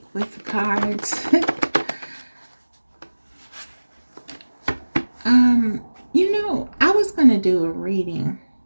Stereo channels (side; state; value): both; inverted; correlation -1.00